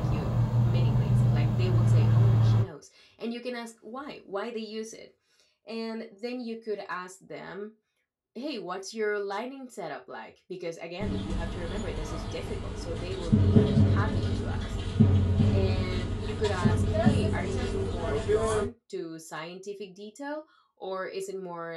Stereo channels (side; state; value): both; identical; correlation 1.00